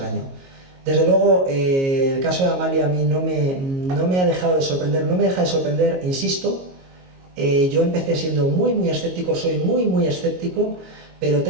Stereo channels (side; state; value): left; late; 22 ms